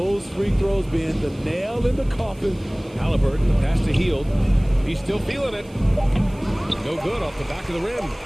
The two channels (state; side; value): noise; right; hiss, 28 dB below the sound